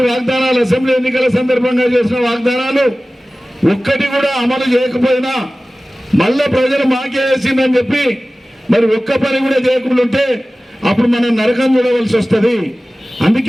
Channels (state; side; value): normal; both; correlation 0.97